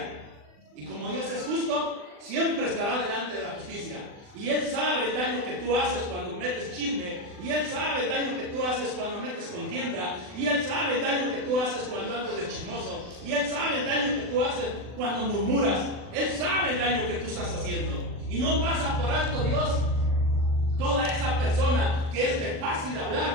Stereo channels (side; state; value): left; late; 40 ms